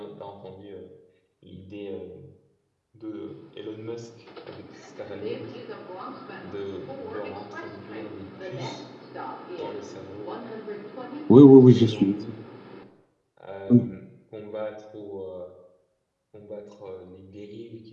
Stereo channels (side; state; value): both; identical; correlation 1.00